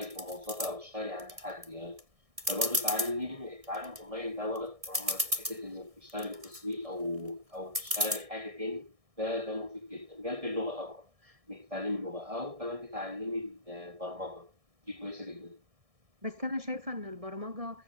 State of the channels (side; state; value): left; late; 1.6 ms